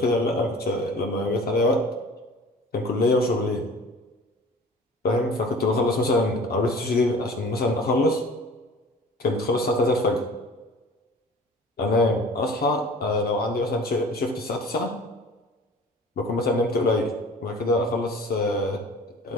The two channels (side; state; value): both; normal; correlation 0.44